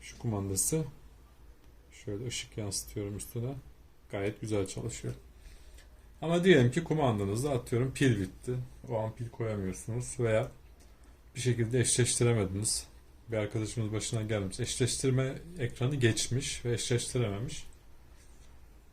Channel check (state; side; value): identical; both; correlation 1.00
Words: şu kumandası, şöyle ışık yansıtıyorum üstüne, gayet güzel çalışıyor. Ama diyelim ki kumandanızda atıyorum pil bitti. O an pil koyamıyorsunuz veya bir şekilde eşleştiremediniz. Bir arkadaşımız başına gelmiş. Eşleştirme ekranı geçmiş ve eşleştirememiş.